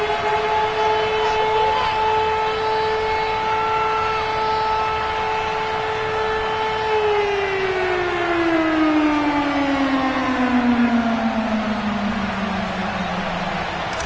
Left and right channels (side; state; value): both; identical; correlation 1.00